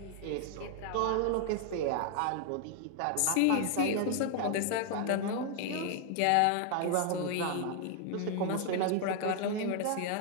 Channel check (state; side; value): different; both; correlation 0.00